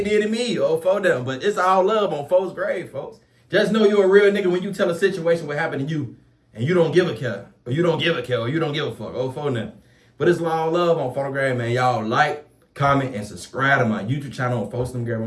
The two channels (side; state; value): both; identical; correlation 1.00